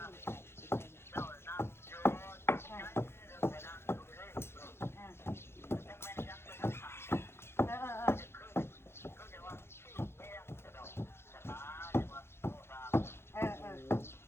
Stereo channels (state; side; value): late; right; 0.12 ms